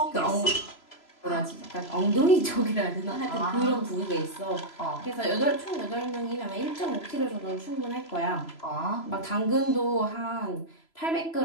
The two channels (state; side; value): late; right; 3.0 ms